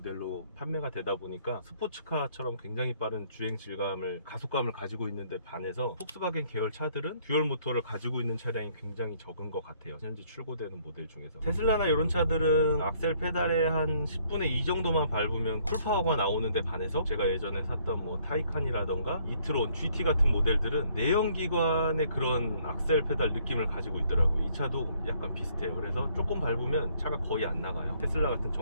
판매가 되다 보니까 스포츠카처럼 굉장히 빠른 주행 질감을 가속감을 가지고 있는데 반해서 폭스바겐 계열 차들은 듀얼 모터를 가지고 있는 차량이 굉장히 적은 것 같아요. 현재 출고되는 모델 중에서 테슬라나 이런 차들은 악셀 페달에 한 10분의 2 정도만 밟으면 쿨파워가 나오는데 반해서 제가 예전에 샀던 뭐 타이칸이라던가 이트론, GT 같은 모델들은 내연기관 의 그런 악셀 페달 느낌을 가지고 있더라고요. 이 차도 약간 비슷해요. 그래서 조금 밟으면 차가 거의 안 나가요. 테슬라 같은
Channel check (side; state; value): both; inverted; correlation -0.64